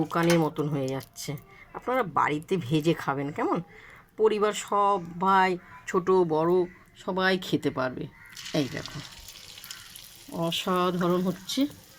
মতন হয়ে যাচ্ছে। আপনারা বাড়িতে ভেজে খাবেন। কেমন? পরিবার সবাই, ছোট বড় সবাই খেতে পারবে। এই দেখো অসাধারণ হচ্ছে।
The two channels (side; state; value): both; identical; correlation 1.00